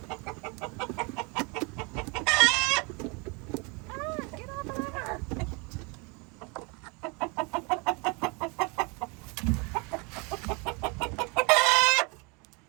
Get off of her.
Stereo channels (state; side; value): quieter; left; 30.4 dB